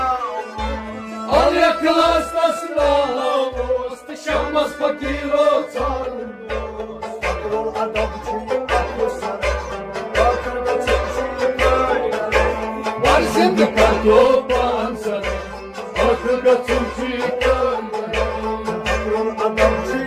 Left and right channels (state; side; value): identical; both; correlation 1.00